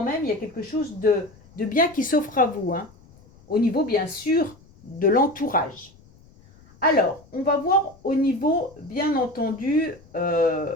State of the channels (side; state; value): left; noise; rumble, 26 dB below the sound